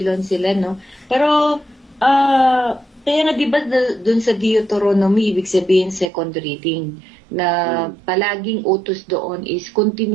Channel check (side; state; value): left; drops out; at 6.1 s